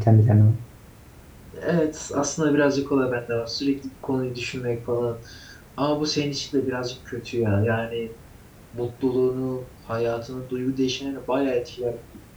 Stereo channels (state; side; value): identical; both; correlation 1.00